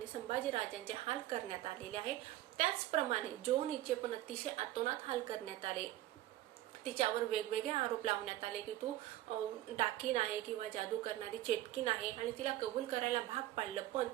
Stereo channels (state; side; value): quieter; left; 14.8 dB